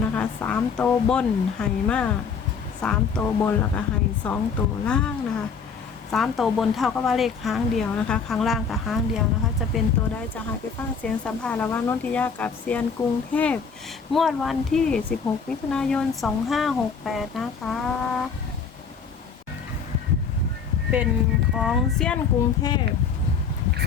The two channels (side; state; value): right; quieter; 5.8 dB